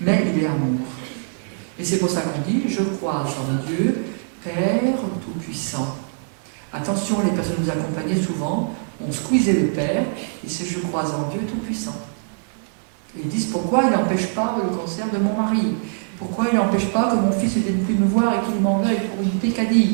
il est amour. Et c'est pour ça qu'on dit, je crois en Dieu, Père Tout-Puissant. Attention, les personnes nous accompagnaient souvent, on squeezait le Père, et c'est je crois en Dieu Tout-Puissant. Et ils disent, pourquoi il n'empêche pas le cancer de mon mari? Pourquoi il n'empêche pas que mon fils ne vienne plus me voir et qu'il m'en veuille pour une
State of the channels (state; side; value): silent; left; digital silence